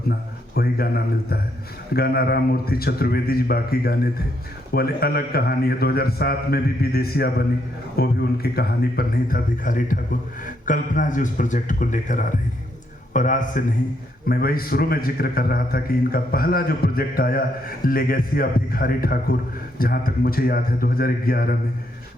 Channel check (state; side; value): normal; both; correlation 0.75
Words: वही गाना मिलता है। गाना राम मूर्ति चतुर्वेदी जी बाकी गाने थे, वो अलग कहानी है। 2007 में भी विदेशिया बनी, वो भी उनकी कहानी पर नहीं था। भिखारी ठाकुर, कल्पना जी उस प्रोजेक्ट को लेकर आ रही है और आज से नहीं, मैं वही शुरू में जिक्र कर रहा था कि इनका पहला जो प्रोजेक्ट आया लेगेसी ऑफ भिखारी ठाकुर, जहाँ तक मुझे याद है 2011 में